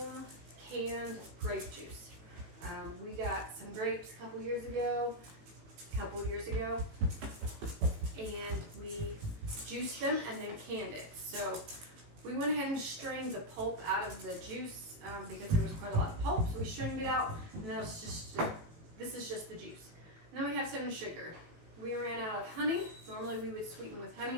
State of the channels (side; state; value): left; late; 18 ms